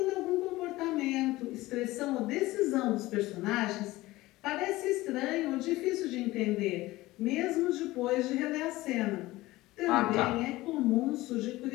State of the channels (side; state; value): right; quieter; 18.5 dB